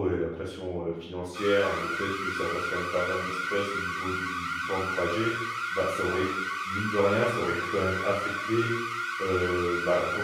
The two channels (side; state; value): both; identical; correlation 1.00